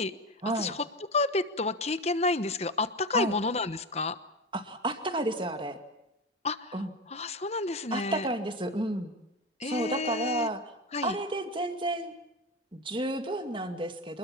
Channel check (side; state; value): both; normal; correlation 0.22